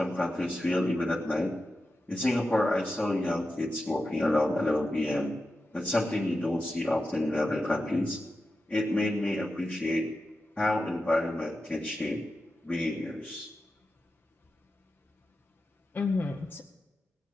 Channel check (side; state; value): both; normal; correlation 0.91